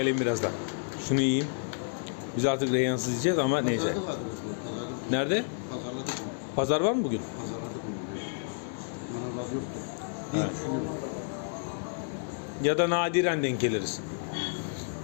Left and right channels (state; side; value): silent; right; digital silence